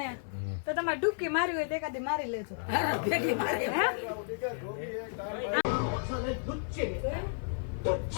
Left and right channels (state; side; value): silent; right; 56 dB below the other